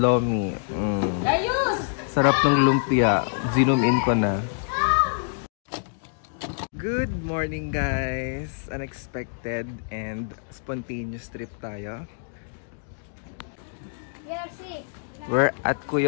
Sarap ng lumpia. Zoom in ko na. Good morning guys! Unexpected and spontaneous trip tayo. We're at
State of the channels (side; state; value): right; silent; digital silence